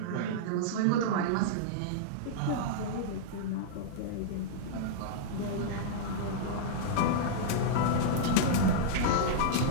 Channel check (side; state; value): both; different; correlation -0.02